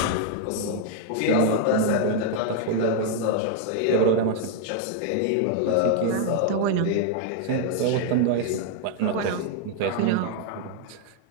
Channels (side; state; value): both; different; correlation 0.00